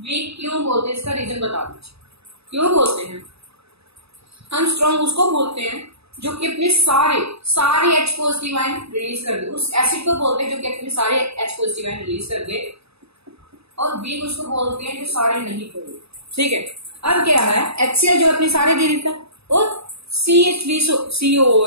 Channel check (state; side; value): late; left; 0.78 ms